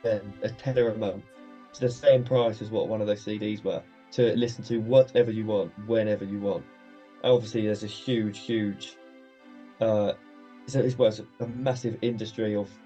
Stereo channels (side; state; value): both; identical; correlation 1.00